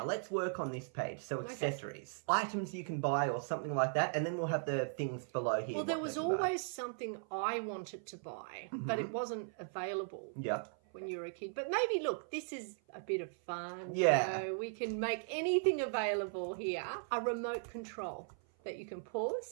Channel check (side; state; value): left; silent; 53 dB below the other